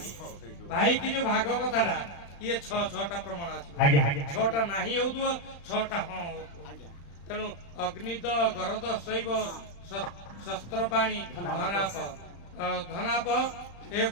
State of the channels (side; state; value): right; late; 35 ms